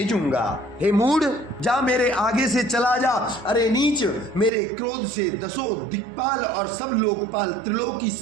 हे मूढ़, जा मेरे आगे से चला जा। अरे नीच, मेरे क्रोध से दसों दिक्पाल और सब लोकपाल त्रिलोकी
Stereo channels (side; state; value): left; drops out; at 4.5 s